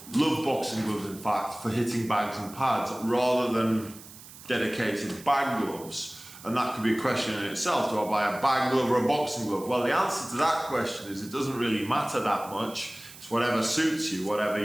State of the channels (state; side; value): noise; right; hiss, 18 dB below the sound